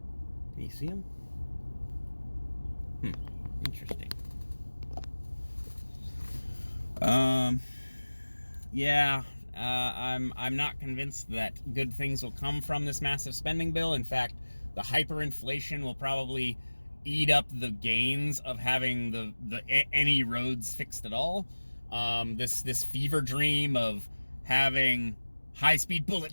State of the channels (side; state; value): both; inverted; correlation -1.00